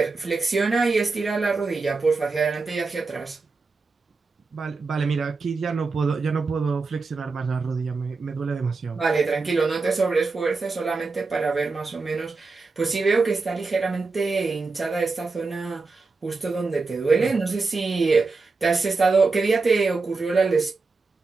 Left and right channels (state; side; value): quieter; left; 4.1 dB